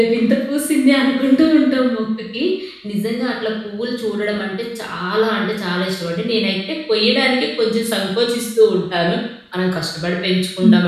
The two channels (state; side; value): identical; both; correlation 1.00